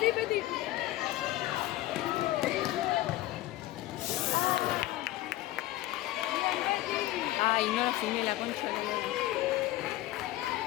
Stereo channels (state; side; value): quieter; right; 16.1 dB